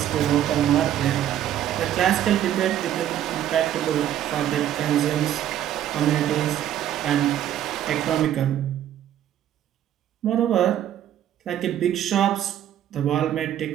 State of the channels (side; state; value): left; quieter; 11.3 dB